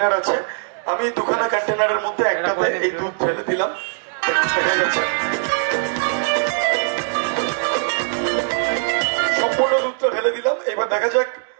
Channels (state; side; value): silent; left; digital silence